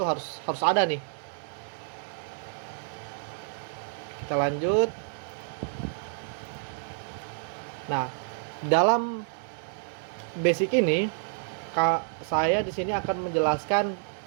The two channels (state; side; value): silent; left; 58 dB below the other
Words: harus ada nih. Kita lanjut. Nah, dalam basic ini saya di sini akan menjelaskan